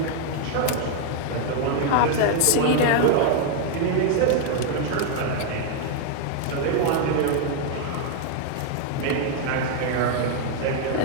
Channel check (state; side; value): different; both; correlation 0.00